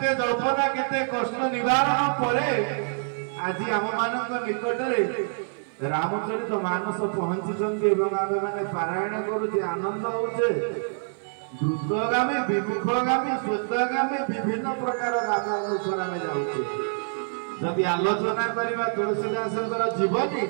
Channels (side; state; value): left; silent; 61 dB below the other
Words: जल्पना केते कष्ट निवारण पर आज आम मान निकट रामचरित मानस पहुंची आम मैंने पारायण करुचे आनंद होचे द्रुतगामी विमुखगामी श्वेतगामी विभिन्न प्रकार गामी अनुसार आम जाऊे जदि आलोचना करवा तुलसीदास जीवनी